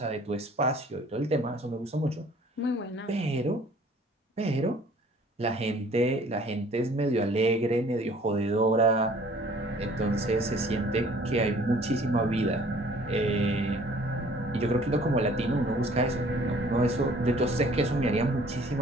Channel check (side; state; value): both; normal; correlation 0.54